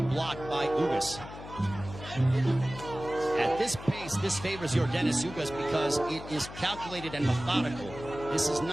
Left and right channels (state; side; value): noise; left; hum, 13 dB below the sound